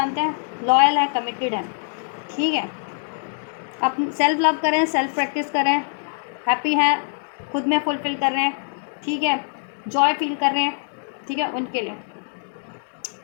हैं, लॉयल है, कमिटेड है, ठीक है, अपनी सेल्फ लव करें, सेल्फ प्रैक्टिस करें, हैप्पी हैं, खुद में फुलफिल कर रहे हैं, ठीक है, जॉय फील कर रहे हैं, ठीक है, उनके लिए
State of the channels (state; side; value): silent; right; digital silence